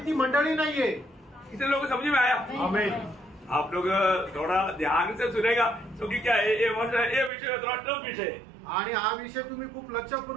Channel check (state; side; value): drops out; left; at 7.3 s